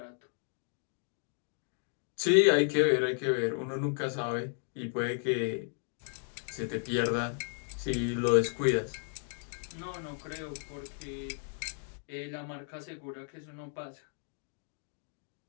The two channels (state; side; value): silent; right; 55 dB below the other